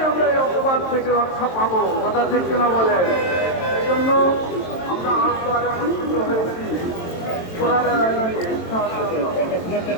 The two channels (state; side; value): late; right; 23 ms